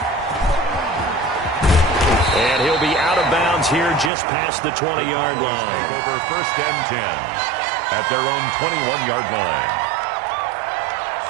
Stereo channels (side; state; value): left; drops out; at 4.1 s